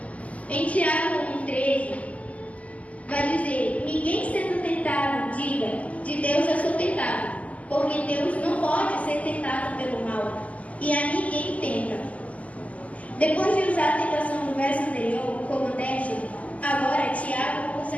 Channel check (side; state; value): right; late; 0.070 ms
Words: Em Tiago 1:13 vai dizer: ninguém sendo tentado diga, de Deus eu sou tentado, porque Deus não pode ser tentado pelo mal, e a ninguém tenta. Depois de usar a tentação do verso anterior como teste, agora Tiago usa